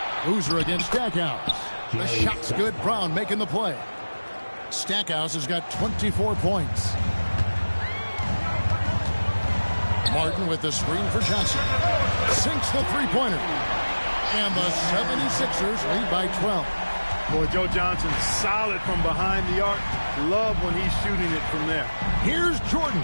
Boozer against Stackhouse. The shot's good. Brown making the play. Stackhouse has got 24 points. Martin with the screen for Johnson. Sinks the three-pointer. And the 76ers lead by 12. Boy, Joe Johnson solid from behind the arc. Love when he's shooting it from there. Here's Jordan.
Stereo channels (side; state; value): both; inverted; correlation -1.00